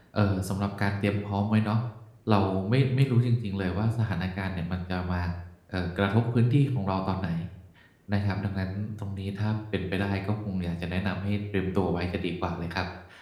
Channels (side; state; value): both; identical; correlation 1.00